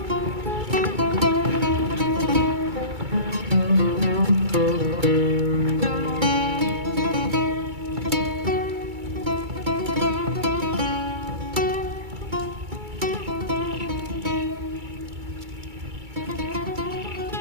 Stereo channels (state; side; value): late; left; 2.3 ms